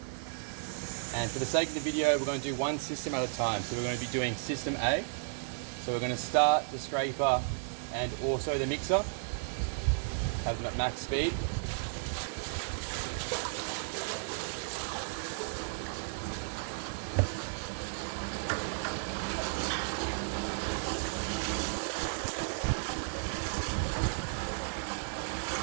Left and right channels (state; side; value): silent; left; digital silence